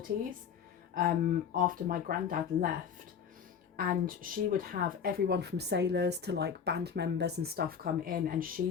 after my granddad left. And she would have everyone from sailors to like band members and stuff come in, and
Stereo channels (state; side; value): quieter; right; 7.4 dB